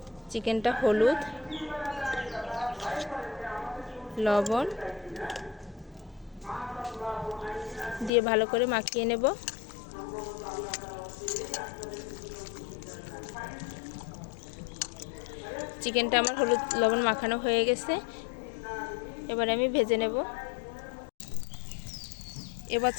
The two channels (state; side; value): drops out; right; at 8.1 s